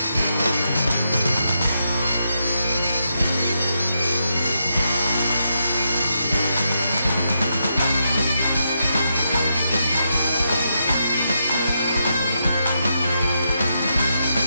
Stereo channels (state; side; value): inverted; both; correlation -0.83